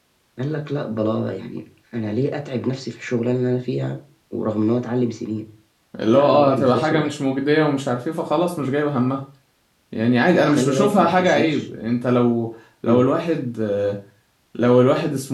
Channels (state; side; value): identical; both; correlation 1.00